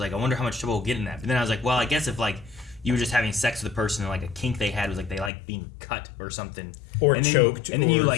I wonder how much trouble we'll get in that. But then I was like, well, I guess if like you were just having sex with a person and like a kink they had was like they like being cut or something, Or and then, choked and then you or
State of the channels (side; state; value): right; drops out; at 5.3 s